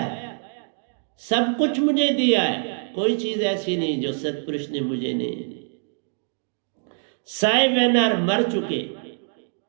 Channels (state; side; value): silent; left; digital silence